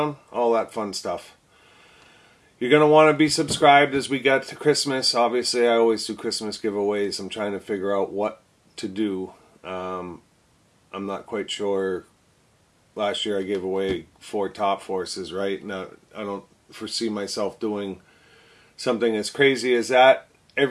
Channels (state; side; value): identical; both; correlation 1.00